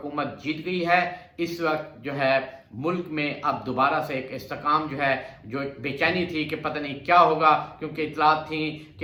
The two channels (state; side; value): identical; both; correlation 1.00